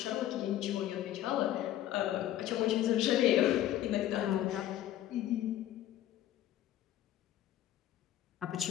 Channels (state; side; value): quieter; right; 12.8 dB